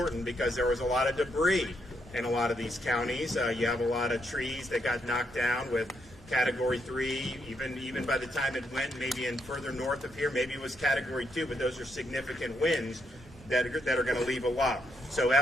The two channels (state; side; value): normal; both; correlation 0.77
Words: because there was a lot of debris in a lot of these counties. You have a lot of trees that got knocked down with Category 3, even by the time it went maybe in further north of here, maybe it was Category 2, but those are significant winds that are going to leave a lot. So